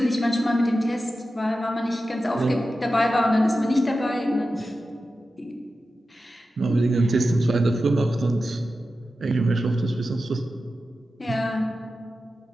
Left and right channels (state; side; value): normal; both; correlation 0.92